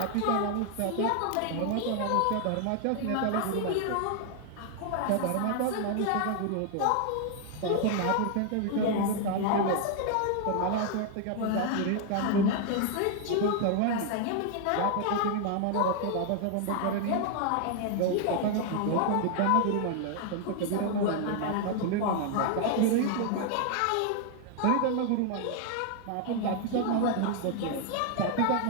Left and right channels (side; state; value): both; different; correlation 0.00